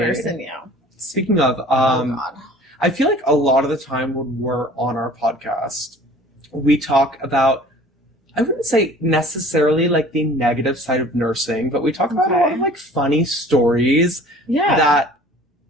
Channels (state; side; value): normal; both; correlation 0.48